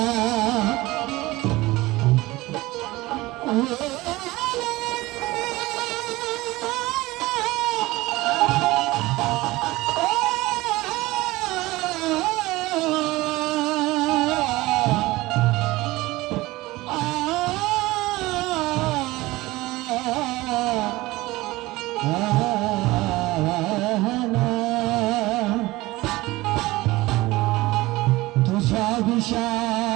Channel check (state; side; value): quieter; left; 19.7 dB